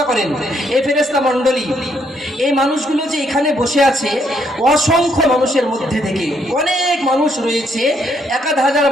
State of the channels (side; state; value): both; normal; correlation 0.72